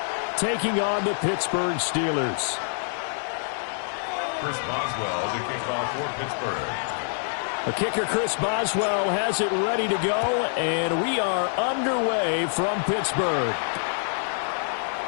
taking on the Pittsburgh Steelers. Chris Boswell to kick off for Pittsburgh. The kicker, Chris Boswell, has it ready to go, and we are underway from Pittsburgh.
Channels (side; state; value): right; silent; digital silence